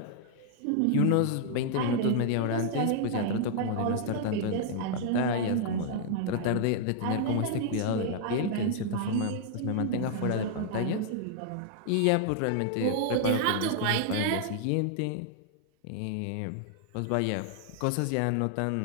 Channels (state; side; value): different; both; correlation -0.01